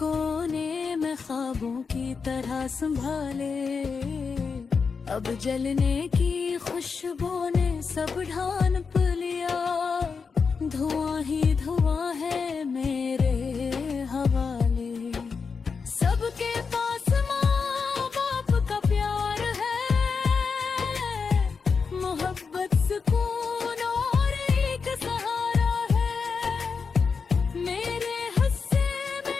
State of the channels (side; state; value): right; quieter; 5.3 dB